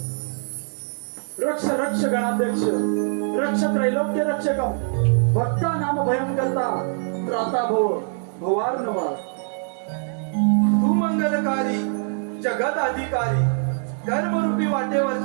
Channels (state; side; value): silent; left; 62 dB below the other